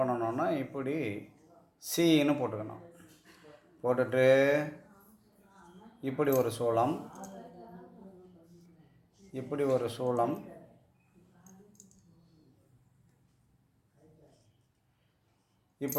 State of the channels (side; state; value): both; identical; correlation 1.00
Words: இப்படி சீன்னு போட்டுக்கணும். போட்டுட்டு இப்படி ஒரு சூளம், இப்படி ஒரு சூளம்,